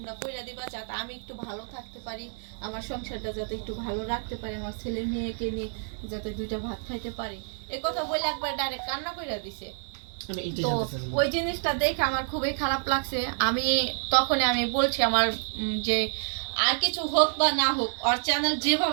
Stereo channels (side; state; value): left; silent; digital silence